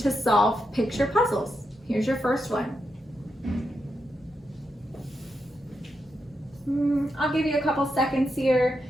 solve picture puzzles. Here's your first one. I'll give you a couple seconds here.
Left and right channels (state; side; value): normal; both; correlation 0.84